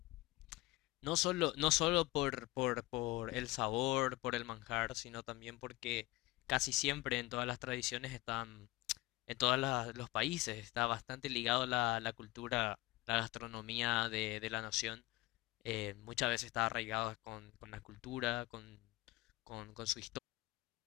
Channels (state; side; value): quieter; right; 19.7 dB